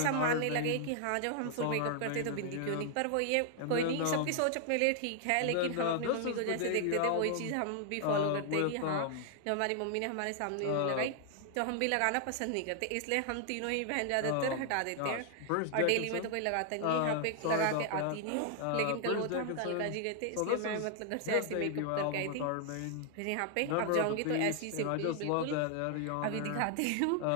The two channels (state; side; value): different; both; correlation 0.00